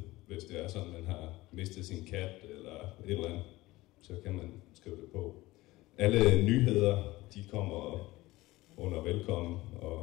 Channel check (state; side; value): quieter; right; 19.0 dB